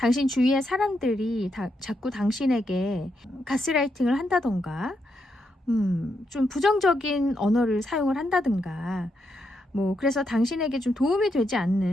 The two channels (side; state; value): both; normal; correlation 0.81